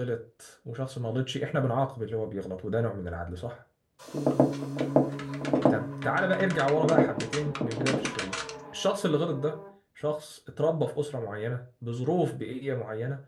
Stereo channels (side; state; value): both; identical; correlation 1.00